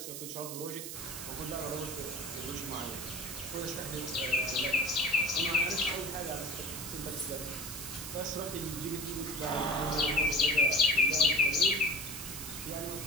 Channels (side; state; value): right; noise; hiss, 8 dB below the sound